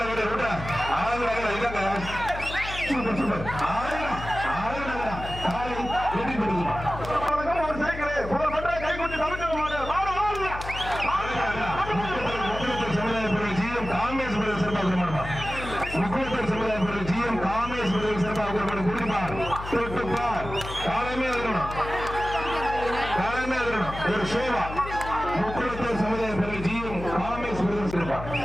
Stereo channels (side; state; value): left; noise; hum, 10 dB below the sound